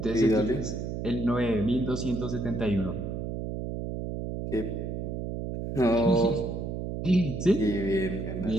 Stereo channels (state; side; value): noise; right; hum, 4 dB below the sound